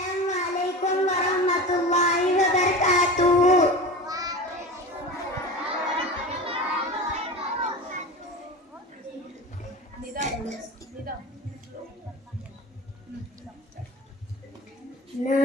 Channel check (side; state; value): both; normal; correlation 0.31